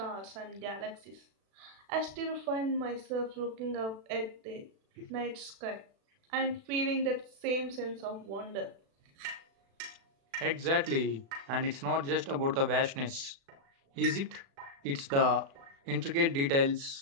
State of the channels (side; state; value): left; late; 36 ms